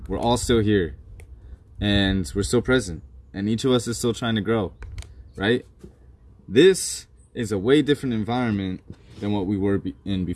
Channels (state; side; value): identical; both; correlation 1.00